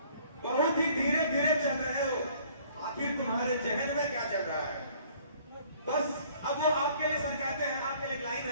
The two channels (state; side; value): inverted; both; correlation -0.57